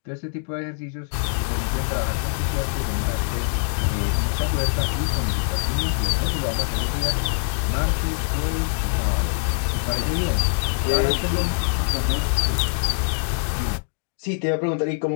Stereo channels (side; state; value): right; silent; digital silence